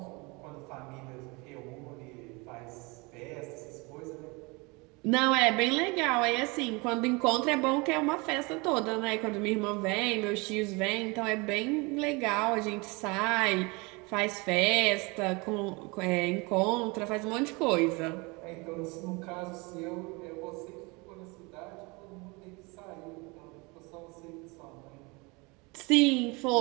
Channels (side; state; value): left; quieter; 27.2 dB